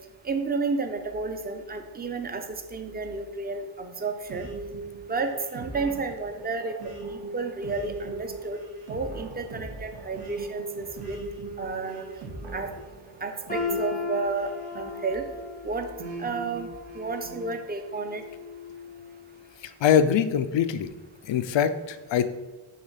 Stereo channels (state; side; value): normal; both; correlation -0.01